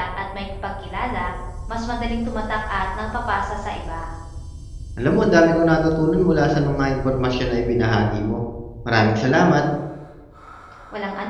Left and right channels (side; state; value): both; identical; correlation 1.00